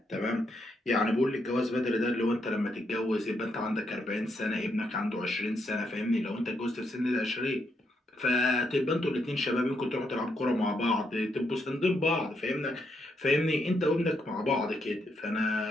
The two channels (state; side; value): normal; both; correlation 0.78